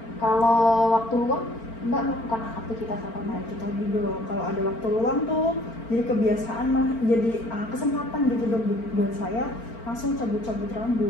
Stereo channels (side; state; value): right; late; 4.4 ms